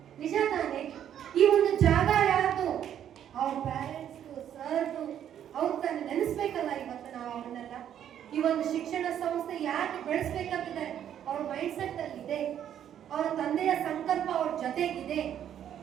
ನಿಜ ತಾನೆ? ಈ ಒಂದು ಜಾಗ ಯಾರ್ದು? ಅವ್ರ ಪೇರೆಂಟ್ಸ್, ಸರ್ದು, ಅವ್ರು ತಾನು ನೆನೆಸ್ಬೇಕಲ್ಲ. ಇವತ್ತು ನಾವು ಅವನ್ನೆಲ್ಲ ಈ ಒಂದು ಶಿಕ್ಷಣ ಸಂಸ್ಥೆ ಯಾಕೆ ಬೆಳೆಸ್ಬೇಕಂತಿದೆ, ಅವ್ರ ಮೈಂಡ್ ಸೆಟ್ ಅಲ್ಲಿ ಇದೆ. ಅವರ ತಂದೆಯ ಸಂಕಲ್ಪ ಅವ್ರ ಜೊತೆಗಿದೆ.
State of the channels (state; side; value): quieter; left; 10.0 dB